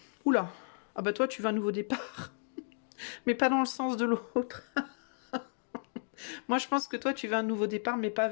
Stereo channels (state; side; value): silent; right; digital silence